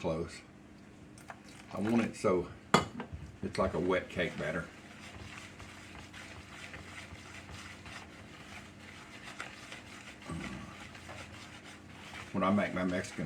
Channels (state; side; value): identical; both; correlation 1.00